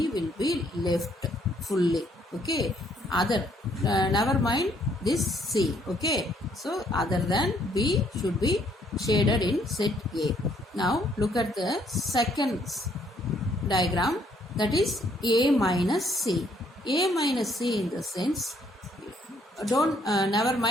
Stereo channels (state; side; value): normal; both; correlation 0.67